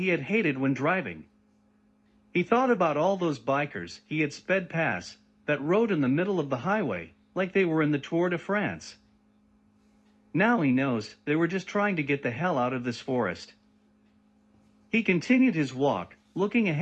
had hated when driving. He thought about all those bikers he had sped past that rode in the middle of the highway like they were in the Tour de France. Now he knows they were just trying to get the hell out of this forest. He continued his walk, looking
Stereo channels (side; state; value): both; identical; correlation 1.00